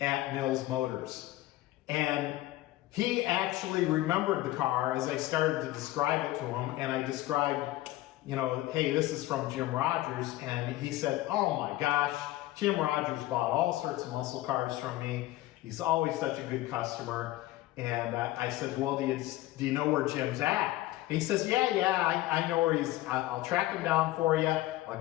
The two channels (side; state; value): right; quieter; 16.5 dB